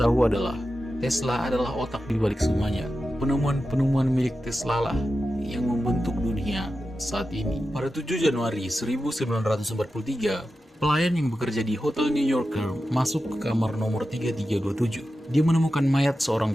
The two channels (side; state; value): both; normal; correlation 0.92